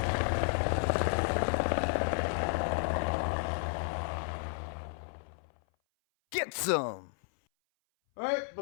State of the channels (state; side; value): silent; right; 56 dB below the other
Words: Get some! Alright,